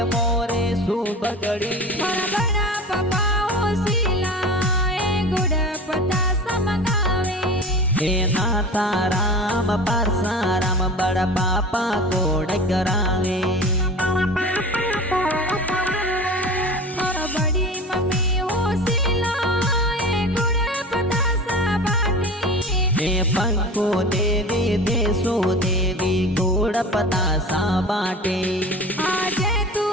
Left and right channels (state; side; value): normal; both; correlation 0.35